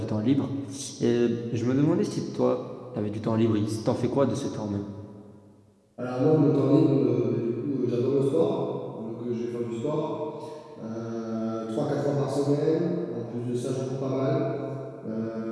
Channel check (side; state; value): both; identical; correlation 1.00